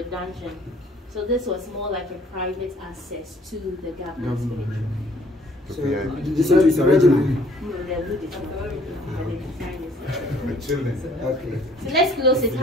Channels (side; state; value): both; normal; correlation 0.59